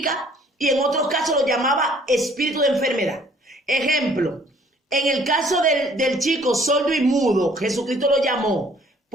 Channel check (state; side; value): normal; both; correlation 0.58